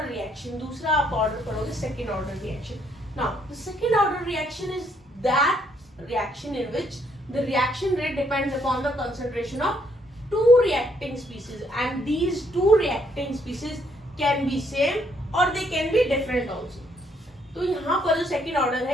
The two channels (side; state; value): both; normal; correlation 0.70